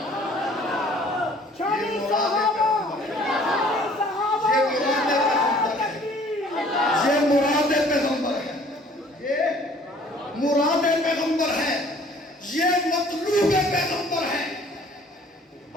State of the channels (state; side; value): normal; both; correlation 0.55